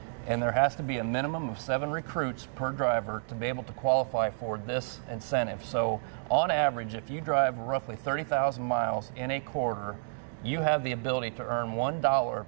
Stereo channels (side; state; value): left; silent; digital silence